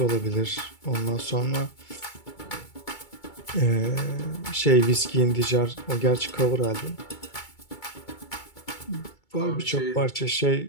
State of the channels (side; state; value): right; late; 2.3 ms